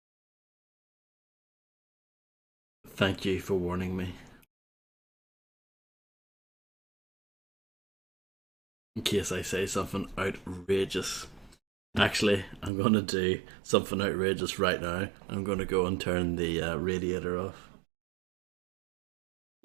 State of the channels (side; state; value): left; drops out; at 12.7 s